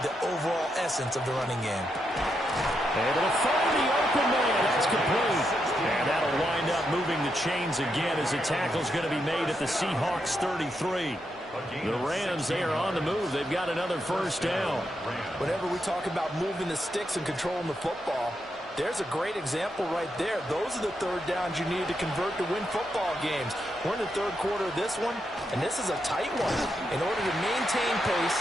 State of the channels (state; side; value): normal; both; correlation 0.83